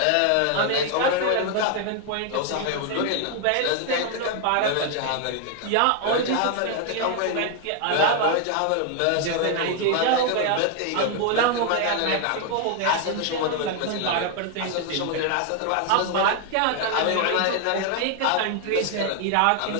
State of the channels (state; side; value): different; both; correlation 0.00